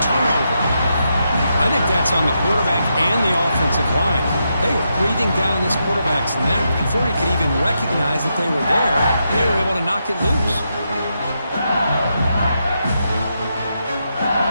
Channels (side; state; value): both; inverted; correlation -0.83